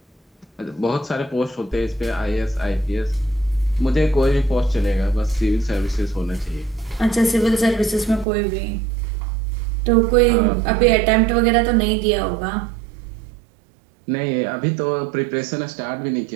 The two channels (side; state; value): left; drops out; at 8.2 s